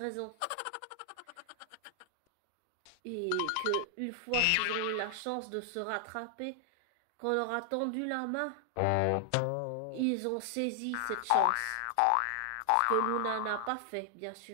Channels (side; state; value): both; different; correlation 0.00